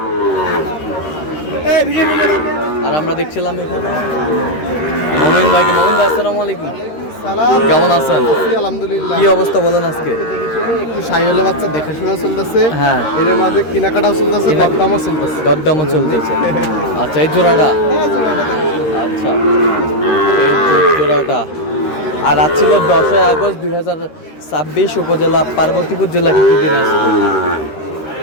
আর আমরা দেখছিলাম এখানে মমিন ভাই। আসসালামু আলাইকুম, কেমন আছেন? আলহামদুলিল্লাহ। কি অবস্থা বলেন আজকে? একটু শাহিওয়ালের বাচ্চা দেখাশোনা চলতেছে। হ্যাঁ, এর মাঝে কেনাকাটাও চলতেছে, দরদামও চলতেছে। দরদামও চলতেছে। আচ্ছা, এই জোড়াটা। আচ্ছা, এই জোড়াটা। আর আজ ছিল 10 আগস্ট 2026, উপজেলা পার্বতীপুর জেলা কিন্তু দিনাজপুর।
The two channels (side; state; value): right; late; 13 ms